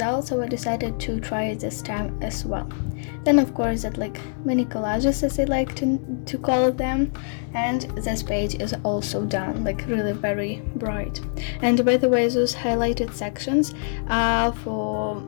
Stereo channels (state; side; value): silent; right; digital silence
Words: so I decided to try it this time as well. Then of course that like mini collages, as I like to call them, and this page is also done, like really very bright. And by the way, those highlighted sections are for